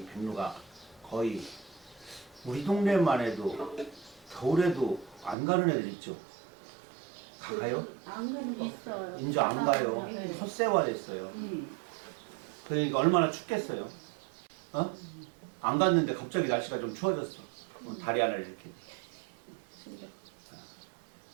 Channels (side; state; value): left; drops out; at 5.4 s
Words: 백로가 거의 우리 동네만 해도 겨울에도 안 가는 애들 있죠. 가요? 안 가는 거 있어요. 이제 안 가요. 네. 솥세화됐어요. 그러니까 얼마나 춥겠어요. 어? 안 갔는데 갑자기 날씨가 좀 추워졌어. 다리 하나를 이렇게.